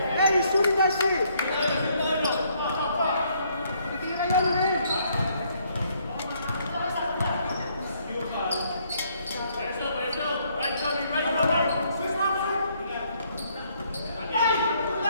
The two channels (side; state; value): both; inverted; correlation -0.68